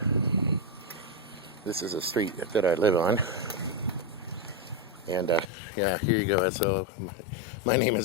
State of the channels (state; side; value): drops out; right; at 5.5 s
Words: This is a street that I live on, and yeah, here you go. So my name